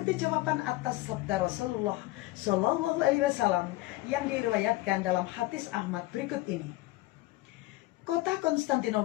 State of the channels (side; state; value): right; quieter; 18.8 dB